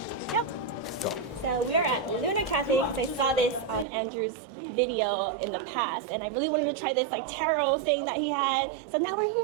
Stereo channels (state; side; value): drops out; left; at 3.9 s